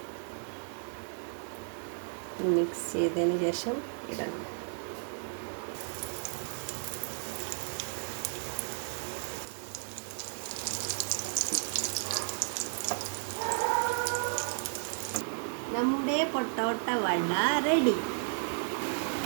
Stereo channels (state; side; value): silent; left; 55 dB below the other